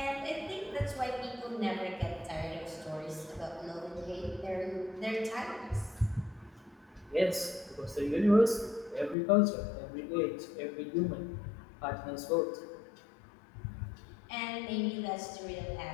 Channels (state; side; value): drops out; right; at 9.2 s